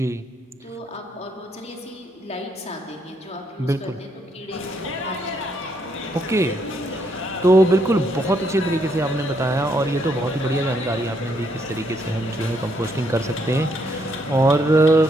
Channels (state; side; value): normal; both; correlation 0.74